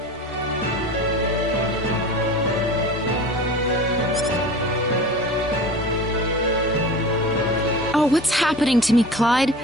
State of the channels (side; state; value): both; normal; correlation 0.36